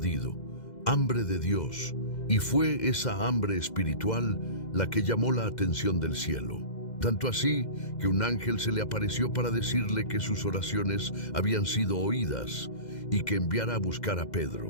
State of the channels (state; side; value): late; right; 2.0 ms